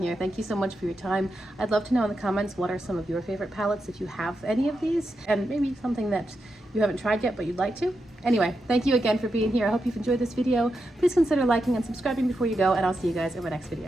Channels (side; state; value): both; normal; correlation 0.87